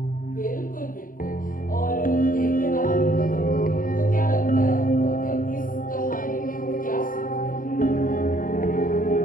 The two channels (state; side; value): late; right; 0.40 ms